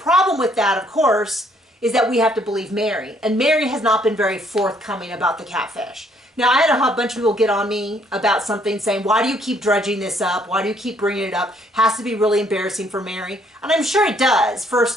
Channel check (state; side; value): normal; both; correlation 0.66